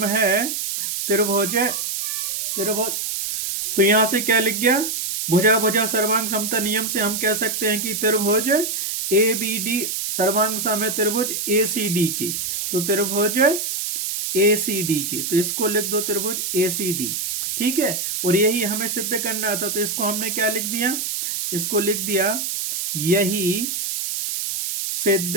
है त्रिभुज। तो यहां से क्या लिख गया, भुजा भुजा सर्वांग समता नियम से हम कह सकते हैं कि त्रिभुज ए बी डी सर्वांग सम है त्रिभुज ए सी डी के, तो त्रिभुज ए सी डी के, तो इसको लिख दो त्रिभुज ए सी डी। ठीक है, और यही हमें सिद्ध करना था, तो इसको हमने क्या लिख दिया, इसको लिख दिया यही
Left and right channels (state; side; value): noise; right; hiss, 2 dB below the sound